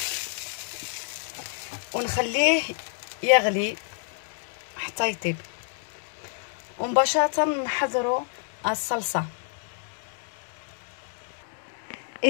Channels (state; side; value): silent; right; 59 dB below the other